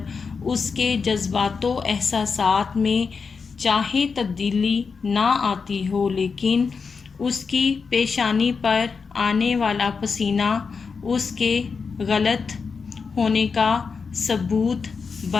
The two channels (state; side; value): quieter; right; 5.2 dB